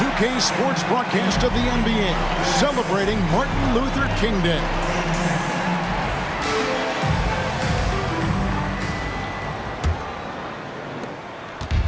Sports broadcast of the NBA, celebrating Martin Luther King Day.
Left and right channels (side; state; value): both; identical; correlation 1.00